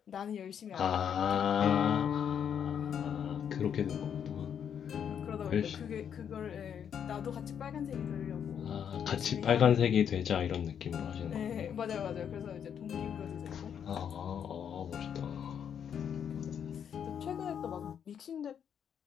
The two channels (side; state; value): right; quieter; 8.3 dB